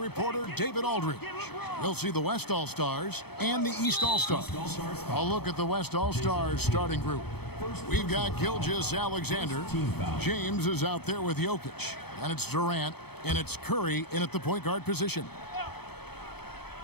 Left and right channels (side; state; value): right; late; 0.97 ms